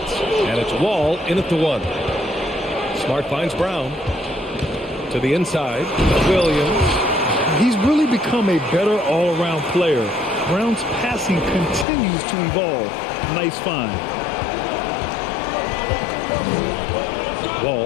And it's Wall in at the 1. Smart finds Brown to the inside. Williams. He's really become a better all-around player. Brown's passing continues to evolve. Nice find.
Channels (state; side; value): drops out; right; at 11.9 s